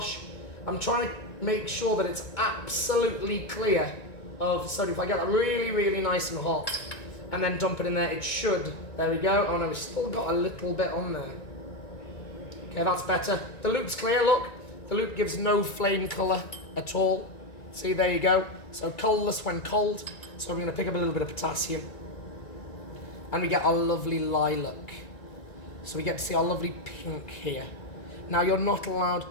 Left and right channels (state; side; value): late; right; 1.9 ms